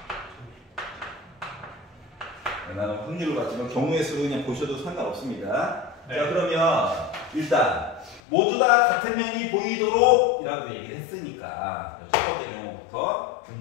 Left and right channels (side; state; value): right; drops out; at 8.2 s